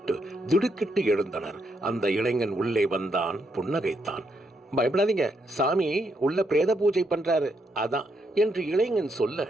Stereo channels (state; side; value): normal; both; correlation 0.78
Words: திடுக்கிட்டு எழுந்தனர். அந்த இளைஞன் உள்ளே வந்தான், புன்னகைத்தான். பயப்படாதீங்க, சாமி உள்ள பிரேத பூஜை பண்றாரு, அதான் என்று இளைஞன் சொல்ல